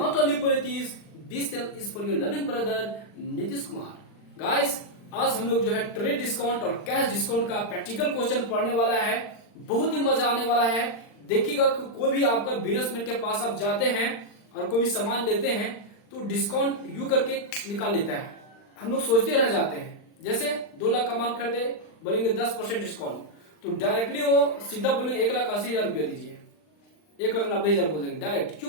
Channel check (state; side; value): late; right; 39 ms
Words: only for this channel is for your loving brother Nitish Kumar. Guys, आज हम लोग जो है trade discount और cash discount का practical question पढ़ने वाला है. बहुत ही मजा आने वाला है. देखिएगा कोई भी आपका बिजनेसमैन के पास आप जाते हैं और कोई भी सामान लेते हैं तो डिस्काउंट यू करके निकाल लेता है. हम लोग सोचते रह जाते हैं, जैसे 2 लाख का माल खरीदे बोलेंगे 10% डिस्काउंट, तो डायरेक्टली वो सीधा बोलेंगे 1,80,000 रुपया दीजिए, 1,90,000 बोल देंगे. डायरेक्ट